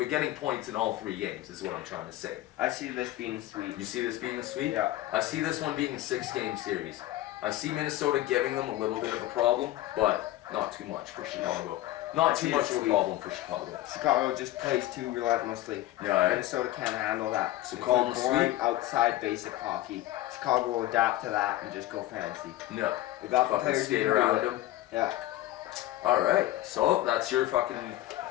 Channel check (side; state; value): right; quieter; 15.3 dB